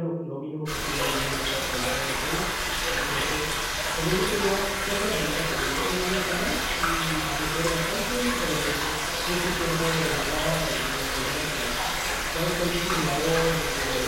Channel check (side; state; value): both; identical; correlation 1.00